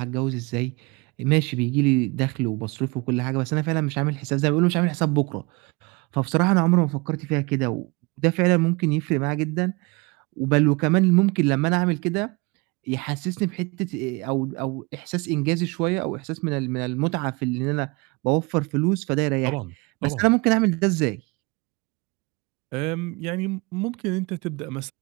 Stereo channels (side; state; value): left; quieter; 26.2 dB